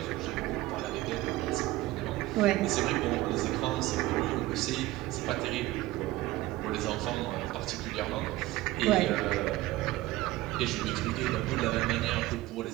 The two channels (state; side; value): quieter; left; 17.5 dB